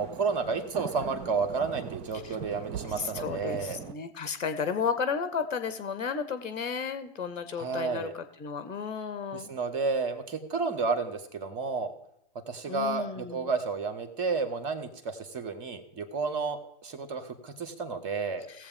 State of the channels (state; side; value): late; left; 1.1 ms